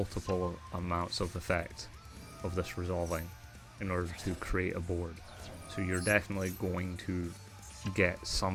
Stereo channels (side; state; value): both; identical; correlation 1.00